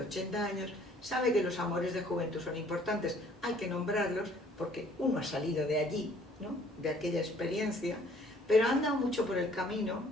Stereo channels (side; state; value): both; normal; correlation 0.58